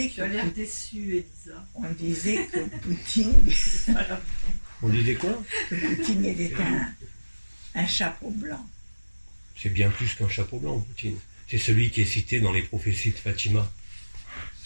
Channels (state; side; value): inverted; both; correlation -1.00